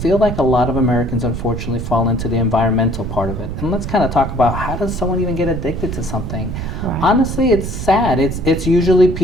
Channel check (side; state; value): right; noise; rumble, 6 dB below the sound